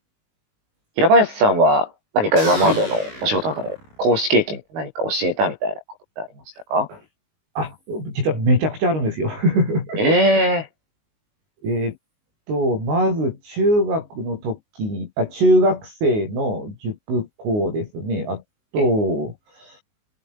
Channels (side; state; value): left; late; 19 ms